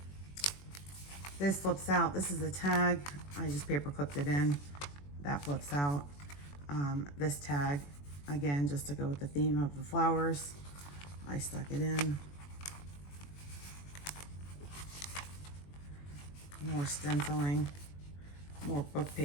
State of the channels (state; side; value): late; right; 21 ms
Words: This flips out. This is a tag. I just paper clipped it in. That flips out. This tag, again, just to go with the theme of the flowers, I stuck it in. More stenciling, more book